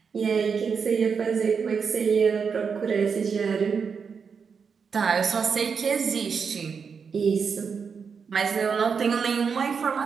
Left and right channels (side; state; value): left; quieter; 6.0 dB